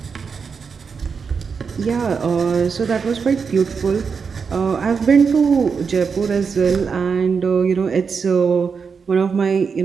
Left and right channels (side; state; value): left; quieter; 5.7 dB